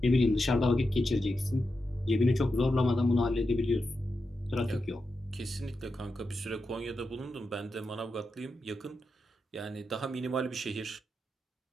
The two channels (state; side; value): normal; both; correlation 0.88